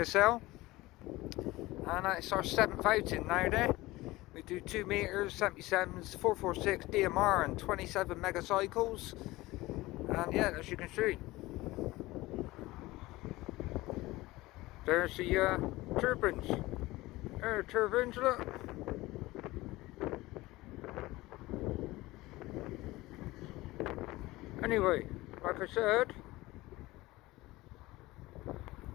And it's our 7th outing now there. We do 2 meters, 77s, 446 DMR and 27 megacycles. And yeah, as you can see, there's the turbines. There are turbines, look. Anyway, like I said,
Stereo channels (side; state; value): right; quieter; 19.3 dB